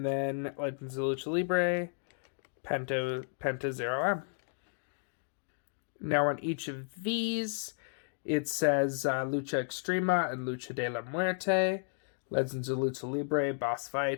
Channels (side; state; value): right; silent; digital silence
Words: then Legends of Lucha Libre, Penta 0M. Now on each of these, it says Lucha Extrema and Lucha de la Muerte. Legends of Lucha Libre,